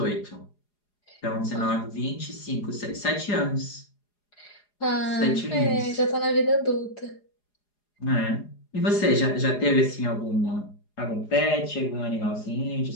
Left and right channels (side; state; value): right; late; 4.8 ms